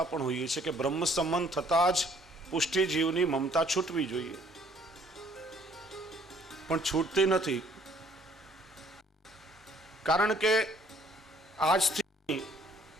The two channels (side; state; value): both; normal; correlation 0.60